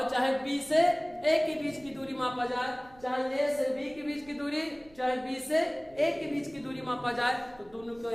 चाहे b से a के बीच की दूरी मापा जाए, चाहे a से b के बीच की दूरी, चाहे b से a के बीच की दूरी मापा जाए, तो दोनों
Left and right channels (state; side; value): noise; right; rumble, 25 dB below the sound